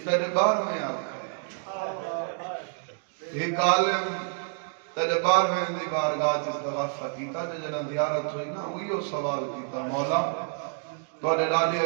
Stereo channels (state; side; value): silent; left; 59 dB below the other